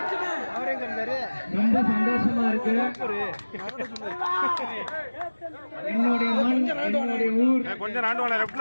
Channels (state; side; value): inverted; both; correlation -1.00